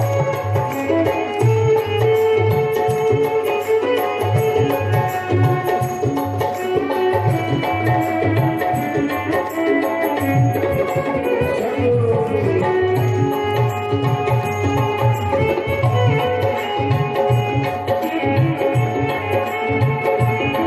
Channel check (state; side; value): identical; both; correlation 1.00